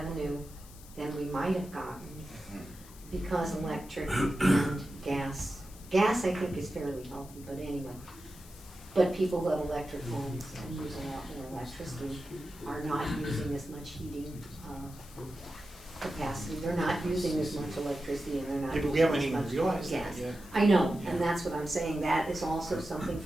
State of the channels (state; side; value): noise; left; hiss, 20 dB below the sound